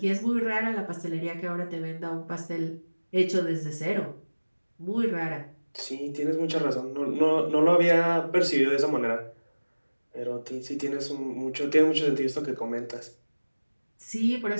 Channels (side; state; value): both; inverted; correlation -1.00